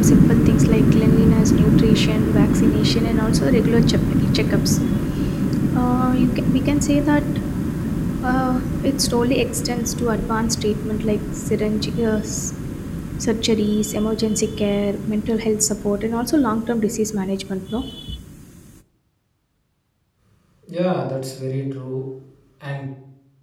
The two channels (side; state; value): both; identical; correlation 1.00